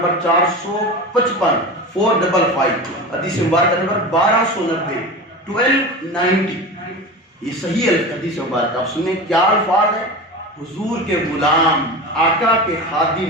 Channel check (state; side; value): normal; both; correlation 0.29